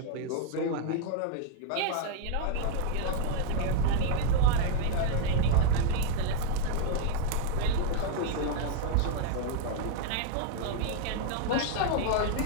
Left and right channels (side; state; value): both; different; correlation 0.00